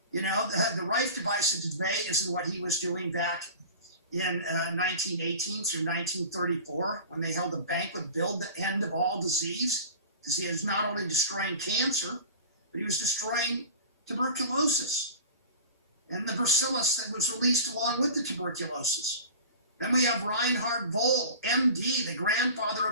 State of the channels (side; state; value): both; inverted; correlation -0.37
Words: The Rife device of today isn't what he was doing back in 1918 through 1934, when they held a banquet billed the end of all disease, because he was not only destroying cancer, but he was destroying tuberculosis and the bacillus that was released along with the tuberculosis. Then we have Reinhard Voll, MD, the grandfather